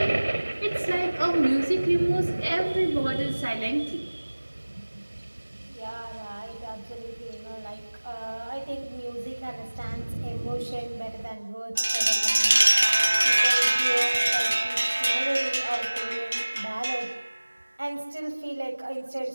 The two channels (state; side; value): inverted; both; correlation -1.00